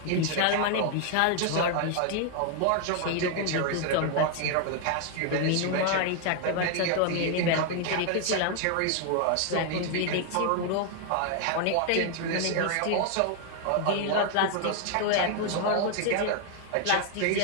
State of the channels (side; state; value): both; different; correlation 0.00